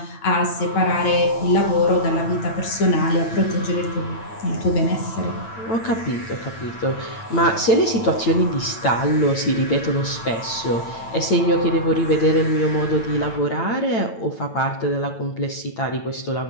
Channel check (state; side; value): late; right; 9.0 ms